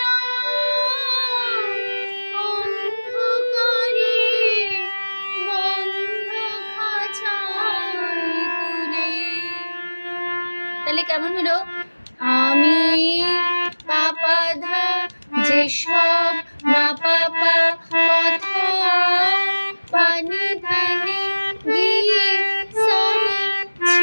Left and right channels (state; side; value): inverted; both; correlation -1.00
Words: হলো আমি পাপা ধা যেসব মা পাপা কথা পানি ধানে গিয়ে সানি